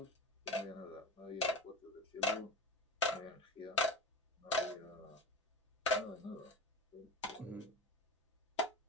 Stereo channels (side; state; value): both; normal; correlation 0.30